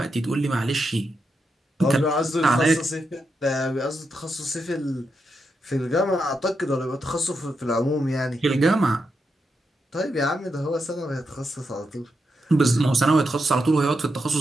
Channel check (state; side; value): normal; both; correlation 0.84